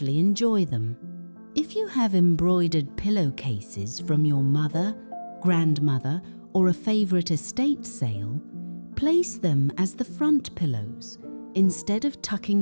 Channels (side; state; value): both; inverted; correlation -1.00